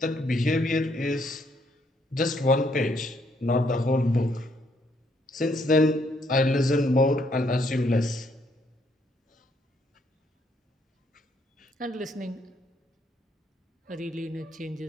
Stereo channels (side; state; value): both; normal; correlation 0.71